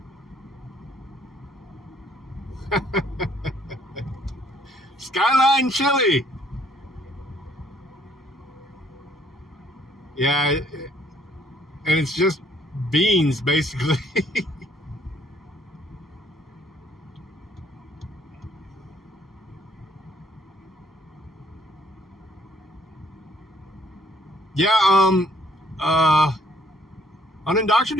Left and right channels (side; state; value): both; normal; correlation 0.64